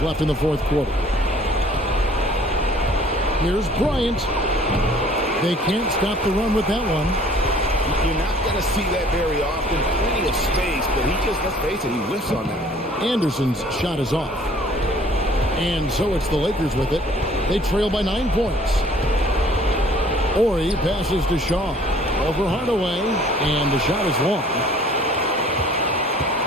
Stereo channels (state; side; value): normal; both; correlation 0.54